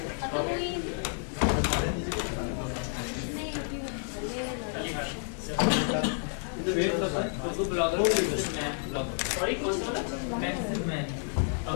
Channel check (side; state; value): right; silent; 58 dB below the other